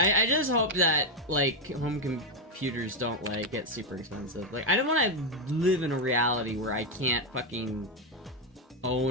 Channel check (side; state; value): both; normal; correlation 0.04